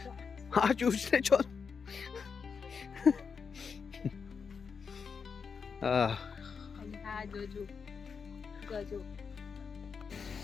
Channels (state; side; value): quieter; right; 5.8 dB